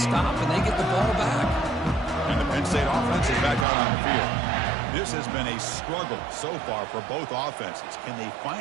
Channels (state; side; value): drops out; left; at 3.7 s